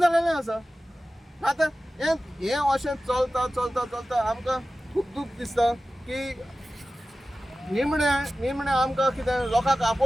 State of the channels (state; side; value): normal; both; correlation 0.95